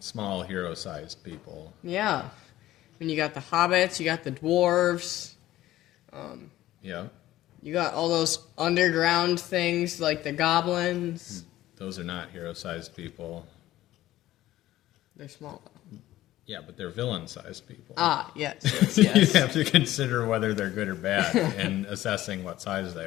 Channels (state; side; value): quieter; right; 14.9 dB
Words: hero-sized people. Yeah. You got the hobbits, you got the dwarves. Yeah. You got all those underground things like the goblins. Those are not hero-sized people. They're small. Yeah, but they're villain-sized people. Yes. You have to consider whether they're good or bad in assessing what size